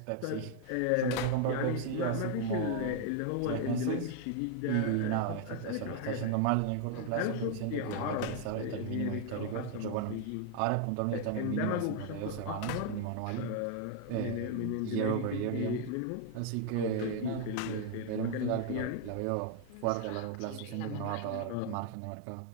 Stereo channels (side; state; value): both; different; correlation 0.00